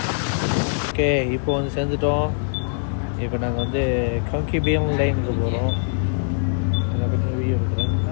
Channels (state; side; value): silent; right; digital silence